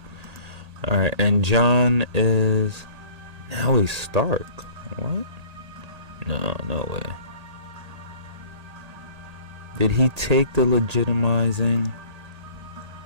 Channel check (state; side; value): late; left; 1.8 ms